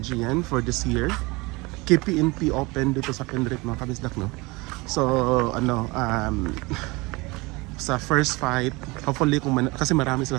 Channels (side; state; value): left; quieter; 24.3 dB